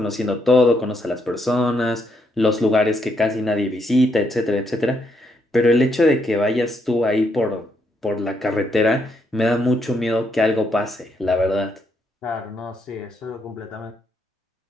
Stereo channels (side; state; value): both; normal; correlation 0.76